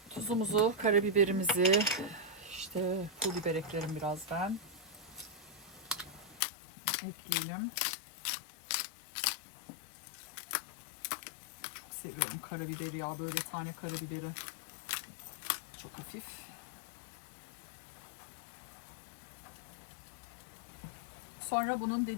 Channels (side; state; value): right; drops out; at 6.4 s